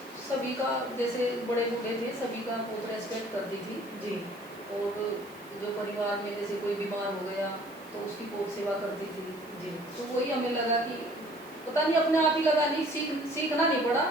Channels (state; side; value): noise; right; hiss, 24 dB below the sound